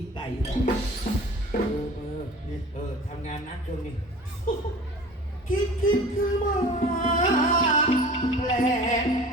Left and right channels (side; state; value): both; normal; correlation 0.41